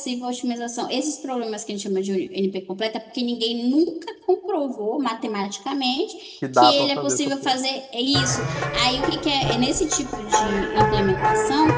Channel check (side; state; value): both; identical; correlation 1.00